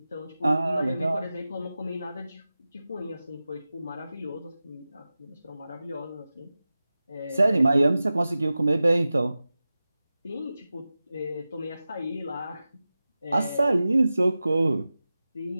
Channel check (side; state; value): both; inverted; correlation -0.95